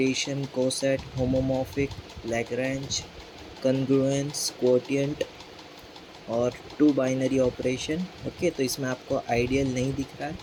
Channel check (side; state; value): both; identical; correlation 1.00